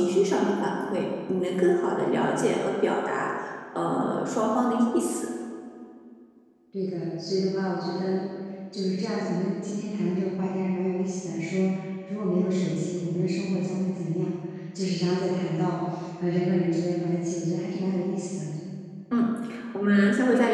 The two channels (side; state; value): both; identical; correlation 1.00